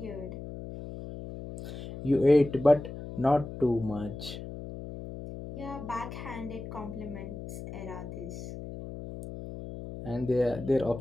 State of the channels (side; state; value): left; noise; hum, 10 dB below the sound